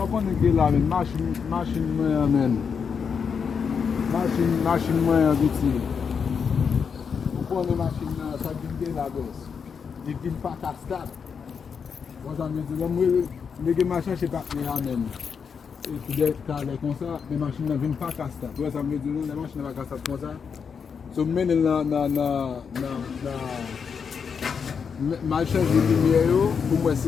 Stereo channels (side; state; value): right; quieter; 6.3 dB